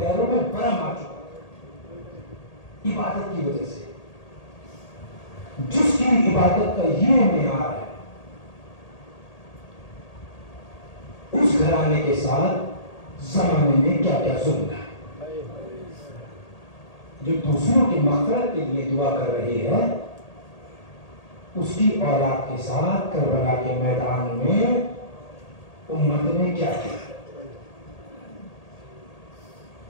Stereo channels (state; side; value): late; right; 1.8 ms